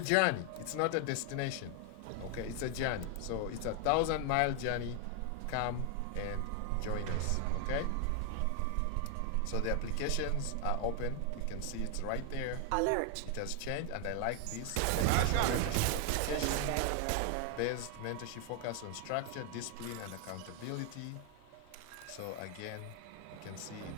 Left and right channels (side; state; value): both; different; correlation 0.00